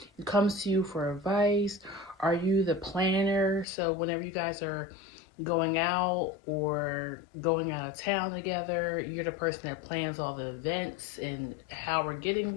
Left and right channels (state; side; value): drops out; right; at 3.7 s